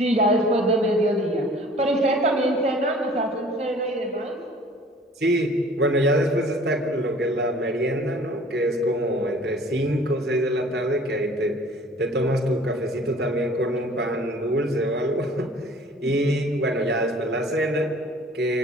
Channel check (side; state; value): both; normal; correlation 0.50